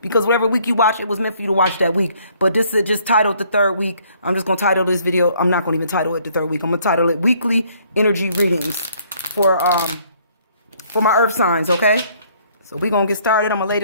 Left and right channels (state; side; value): inverted; both; correlation -0.63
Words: because whatever week you watch, it was meant for you to watch that week. But this is just titled the third week. I'm just going to title this video. I'm not going to even title it the third week. I'm going to title it Weekly Energy Readings for my Earth signs, okay? So we're going to get started. I'm going to lay